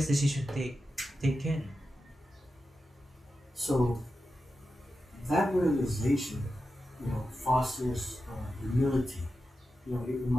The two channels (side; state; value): both; normal; correlation 0.90